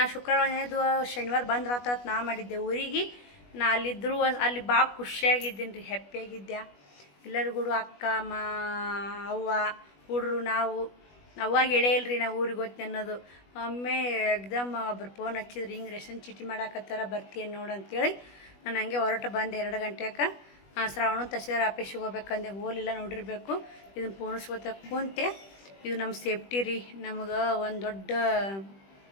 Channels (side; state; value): right; late; 21 ms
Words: ಶುಕ್ರವಾರ ಶನಿವಾರ ಬಂದ್ರಾತ ನಾ ಮಾಡಿದ್ದೆ ಊರಿಗೆ. ನಾ ಅಲ್ಲಿದ್ದರೂ ಅಲ್ಲಿ ಭಾಳ ಖುಷಿಯಾಗಿದ್ದೀನಿ ರೀ, ಹ್ಯಾಪಿಯಾಗಿದ್ದೆ. ಎಲ್ಲರಿಗೂ ಅಕ್ಕ ಅವ್ವ ಹುಡ್ರು ನಾವು ಅವಾಗ ಹೇಳೇ ಇಲ್ರಿ ನಾವು ಊರಿಗೆ ಹೋಗ್ತೀನಿ ಅನ್ನೋದು. ಒಮ್ಮೆ ಎಕ್ದಮ್ ಒಬ್ರು ಫೋನ್ ಹಚ್ಚಿದ್ರು, ಹಿಂಗೆ ರೇಷನ್ ಚೀಟಿ ಮಾಡಾಕತ್ತಾರ ಬರ್ತೀಯನ್ ನೋಡು ಅಂತೇಳಿ. ನಾನು ಹಂಗೆ ಹೊರಟು ಬಂದೆ 2 ಗಂಟೆಗೆ. ಶ್ರಾವಣ ತಹಸೀಲ್ದಾರ್ ಆಫೀಸಿಗೆ ಹೋಗ್ಬೇಕಂದೆ, ಹೋಲಿಲ್ಲ ನೋಡಿರಬೇಕು. ಇದನ್ನು ಪೋಣಿಸ್ಕೋತ ಕುಂತೆ. ಇದು ನಮ್ಮ ಸೇಫ್ಟಿ ರೀ, ನಮಗೆ ಒಂದು ದೊಡ್ಡ